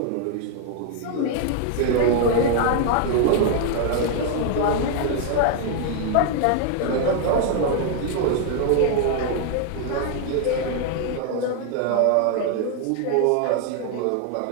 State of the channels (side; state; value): both; different; correlation 0.00